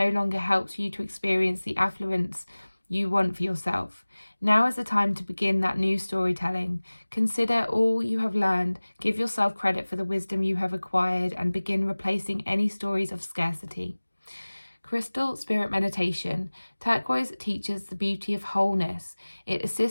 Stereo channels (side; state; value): both; inverted; correlation -1.00